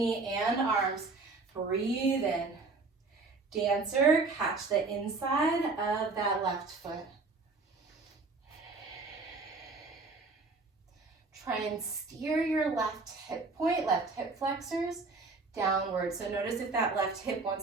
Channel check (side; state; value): left; quieter; 3.8 dB